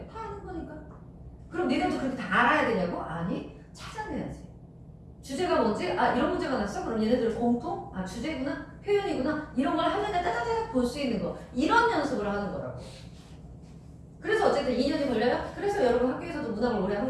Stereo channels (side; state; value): both; identical; correlation 1.00